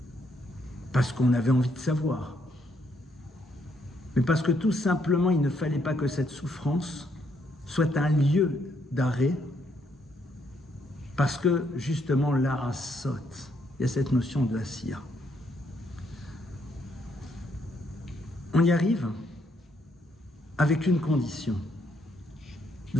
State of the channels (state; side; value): normal; both; correlation 0.73